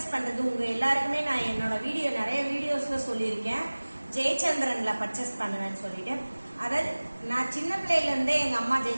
பண்றது உங்க எல்லாருக்குமே நான் என்னோட நிறைய வீடியோஸ்ல சொல்லியிருக்கேன். ஜெயச்சந்திரன்ல பர்ச்சேஸ் பண்ணுவேன்னு சொல்லிட்டு, அதாவது நான் சின்ன பிள்ளையில இருந்தே எங்க அம்மா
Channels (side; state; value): both; inverted; correlation -1.00